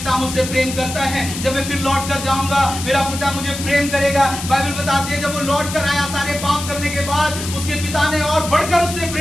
मुझसे प्रेम करता है, जब मैं फिर लौट कर जाऊंगा मेरा पिता मुझे प्रेम करेगा। बाइबल बताती है जब वो लौट कर आया सारे पाप करने के बाद, उसके पिता ने और बढ़कर उससे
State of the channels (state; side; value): noise; left; hiss, 8 dB below the sound